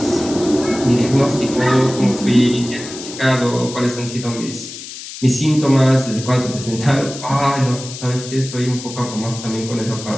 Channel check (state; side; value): noise; left; hiss, 12 dB below the sound